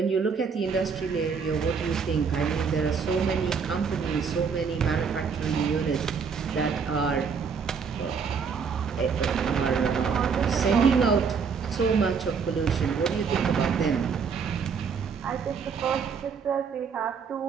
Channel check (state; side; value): quieter; left; 5.9 dB